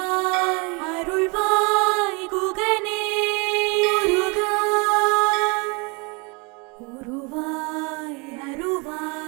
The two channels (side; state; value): left; quieter; 30.5 dB